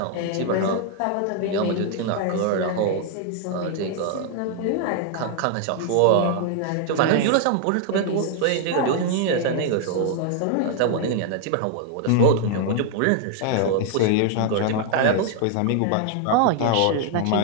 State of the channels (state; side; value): different; both; correlation 0.00